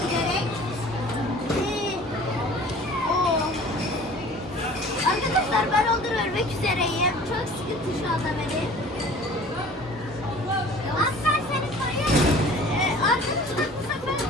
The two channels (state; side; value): normal; both; correlation 0.46